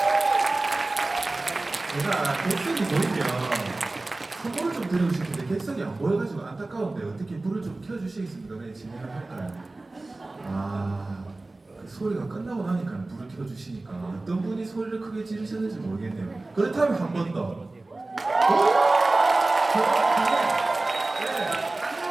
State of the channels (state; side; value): quieter; left; 3.1 dB